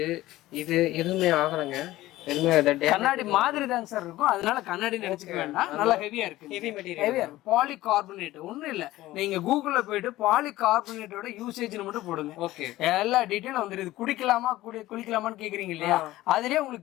எதுவுமே ஆகலைங்க. கண்ணாடி மாதிரி தாங்க சார் இருக்கும், அதனால கண்ணாடி நினைச்சுக்க வேண்டாம். நல்லா ஹெவியா இருக்கு, ஹெவி மெட்டீரியல். பாலிகார்பனேட் ஒண்ணும் இல்ல, நீங்க கூகுள்ல போயிட்டு பாலிகார்பனேட்டோட யூசேஜ் மட்டும் போடுங்க. ஓகே. எல்லா டீடைலும் வந்துருது. குடிக்கலாமா குளிக்கலாமான்னு கேக்குறீங்க இல்லையா, அதுலயே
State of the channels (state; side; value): quieter; right; 16.5 dB